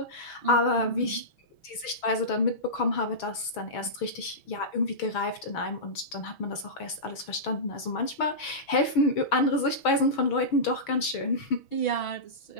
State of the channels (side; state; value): right; late; 6.2 ms